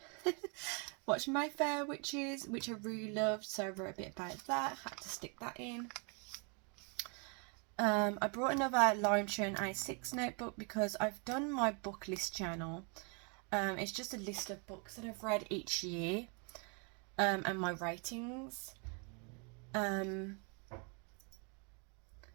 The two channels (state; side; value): quieter; left; 35.5 dB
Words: watch My Fair Witches, which I really loved. So I wrote a bit about that. Had to stick that in. I brought another Hobonichi A6 notebook because I've done my book list journal. It's just a list of books that I've read each year, and my ratings. But